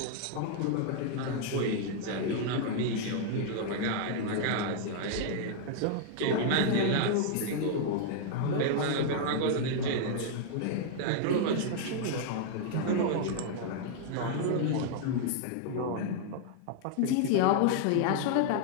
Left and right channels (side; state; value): both; different; correlation -0.01